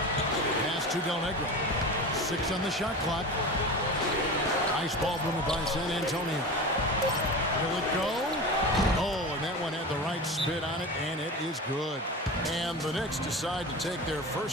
Pass to Del Negro. 6 on the shot clock. Nice ball movement by San Antonio. Will it go? Oh, and that one had the right spin on it, and it is good. And the Knicks decide to take their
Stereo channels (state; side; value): normal; both; correlation 0.29